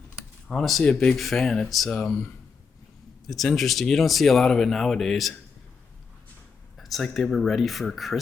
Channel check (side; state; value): right; quieter; 5.4 dB